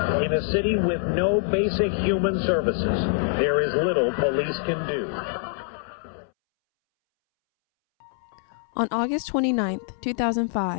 In a city with no basic human services, there is little police can do. On August 29,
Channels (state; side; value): silent; right; 62 dB below the other